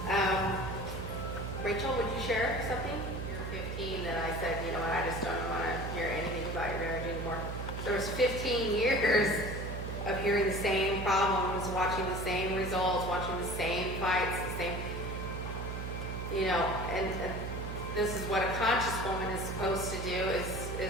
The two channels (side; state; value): right; noise; hum, 5 dB below the sound